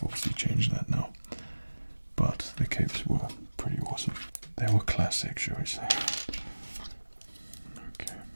obviously changed that now, but the capes were pretty awesome. They were classic, shall we say. Okay.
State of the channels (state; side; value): inverted; both; correlation -1.00